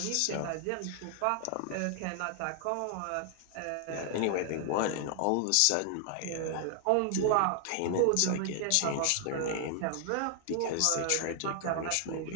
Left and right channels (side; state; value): both; different; correlation 0.00